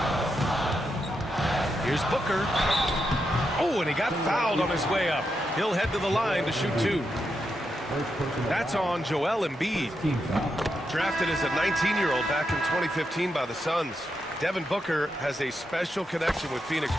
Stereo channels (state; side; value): normal; both; correlation 0.84